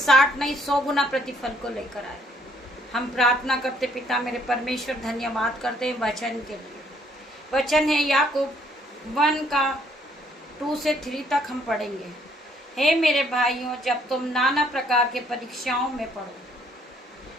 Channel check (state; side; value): normal; both; correlation 0.65